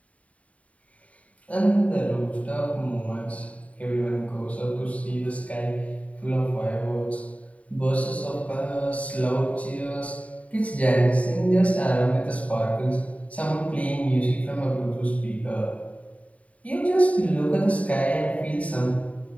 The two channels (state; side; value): late; right; 0.067 ms